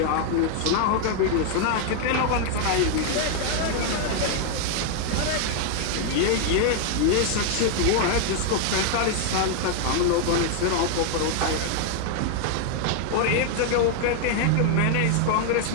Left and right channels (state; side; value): different; both; correlation 0.00